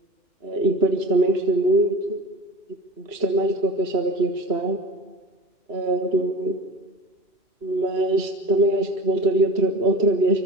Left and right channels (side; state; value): left; late; 2.9 ms